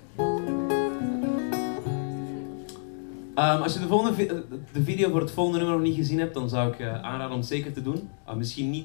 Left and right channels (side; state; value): right; silent; digital silence